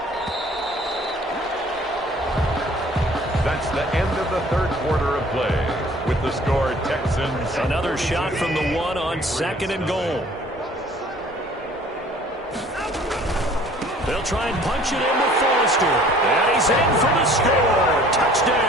That's the end of the third quarter of play. With the score, Texans. Another shot from the 1 on second and goal. They'll try and punch it in with Forrester. And he's in for the score.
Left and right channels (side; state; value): both; normal; correlation 0.52